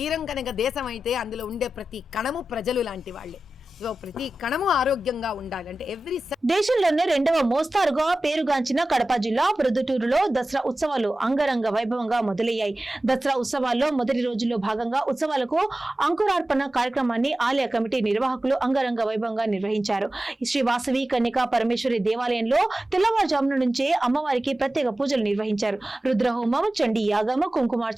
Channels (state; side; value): normal; both; correlation 0.95